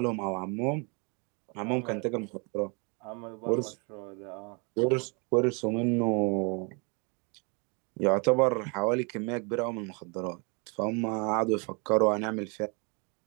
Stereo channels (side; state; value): left; quieter; 33.5 dB